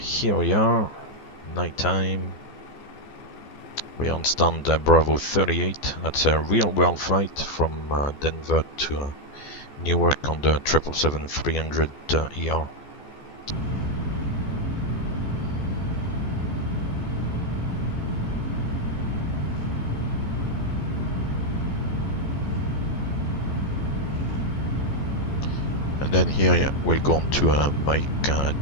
we are, nighttime. We're on stand Bravo 38. That's a real-world flight from Denver to Newark on the 777-300ER. And then here, yeah, we'll go on to Mike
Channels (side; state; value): right; late; 14 ms